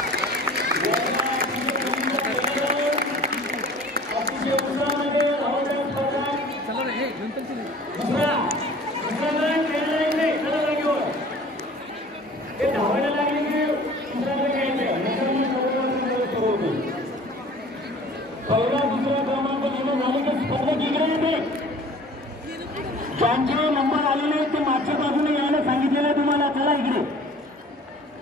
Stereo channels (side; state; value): both; normal; correlation 0.47